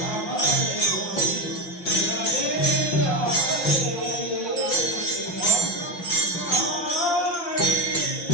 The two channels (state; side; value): late; right; 5.7 ms